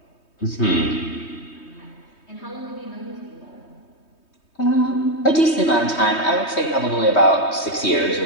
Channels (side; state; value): right; late; 3.2 ms